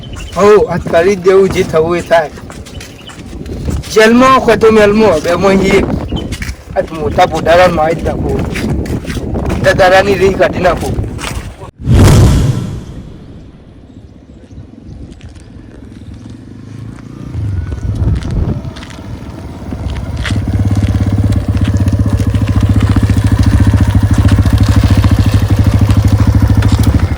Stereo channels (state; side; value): identical; both; correlation 1.00